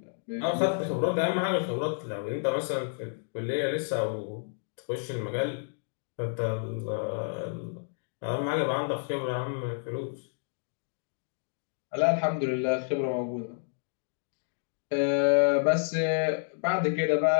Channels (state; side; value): silent; right; digital silence